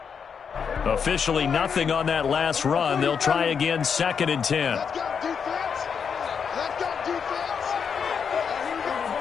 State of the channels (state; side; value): quieter; right; 6.6 dB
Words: Officially nothing on that last run. They'll try again, 2nd and 10.